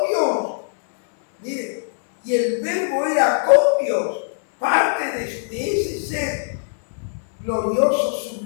Dios. Mire, y el verbo era con Dios, parte de ese ser glorioso,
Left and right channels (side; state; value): right; silent; 65 dB below the other